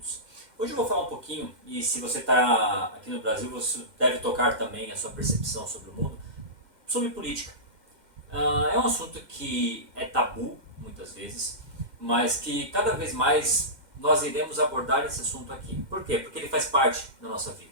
Hoje eu vou falar um pouquinho, e se você está aqui no Brasil, você deve tocar também a sua percepção sobre o mundo, sobre política. É um assunto que é tabu, muitas vezes, mas que cada vez mais nós iremos abordar esse assunto aqui. Por quê? Porque ele faz parte da nossa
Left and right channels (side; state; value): left; late; 2.1 ms